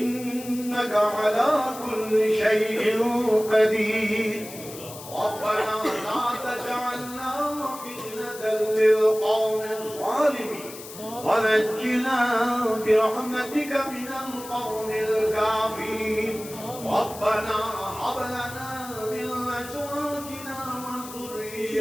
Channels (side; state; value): left; noise; hiss, 14 dB below the sound